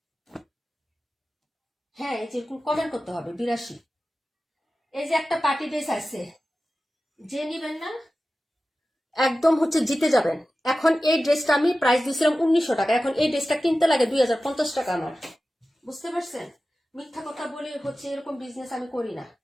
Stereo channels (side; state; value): both; normal; correlation 0.94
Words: হ্যাঁ, এই যে কমেন্ট করতে হবে 82। এই যে একটা পার্টি ড্রেস আছে, যে নিবেন না একদম হচ্ছে জিতে যাবেন। এখন এই ড্রেসটা আমি প্রাইস দিয়েছিলাম 1900 টাকা, এখন এই ড্রেসটা কিনতে লাগে 2050 টাকা আমার। বুঝতে পারছেন? মিথ্যা কথা বলে হচ্ছে এরকম বিজনেস আমি করি না,